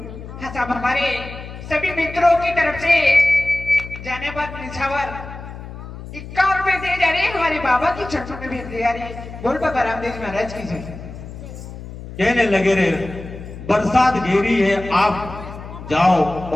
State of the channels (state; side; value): noise; left; hum, 12 dB below the sound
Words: हाँ साहब हमारे सभी मित्रों की तरफ से जाने पर निछावर 51 रुपए दे जा रहे हैं। हमारे बाबा की चरणों में भेज दे जा रही है। बोल बाबा रामदेव महाराज की जय। कहने लगे रे बरसात घेरी है आप जाओ